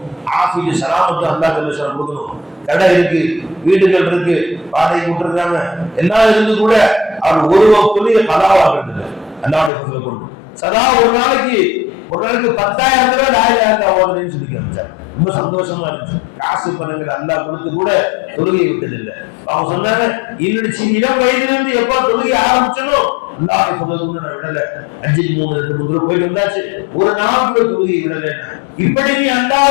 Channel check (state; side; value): drops out; right; at 9.7 s